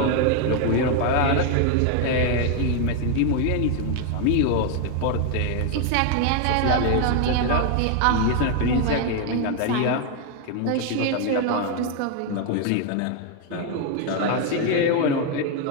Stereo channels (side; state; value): both; different; correlation 0.01